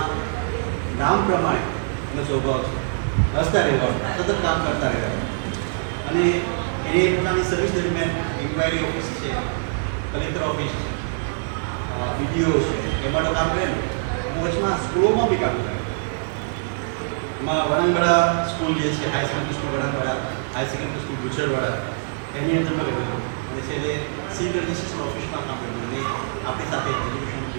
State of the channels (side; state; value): left; silent; digital silence